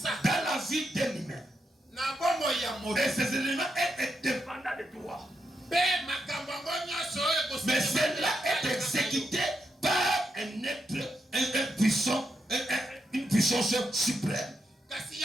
la vie d'un humain. Et ces événements sont dépendants de toi. Mais cela est exécuté par un être, puissant, une puissance suprême. Et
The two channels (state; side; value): normal; both; correlation 0.83